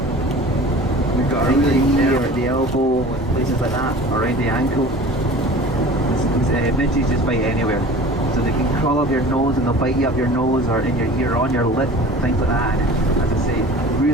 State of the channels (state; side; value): normal; both; correlation 0.41